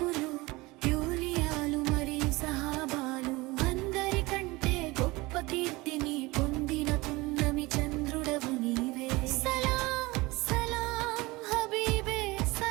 యూలియాలు మరియు సహాబాలు అందరికంటే గొప్ప కీర్తిని పొందిన పున్నమి చంద్రుడవు నీవే సలాం సలాం హబీబే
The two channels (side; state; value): left; quieter; 22.3 dB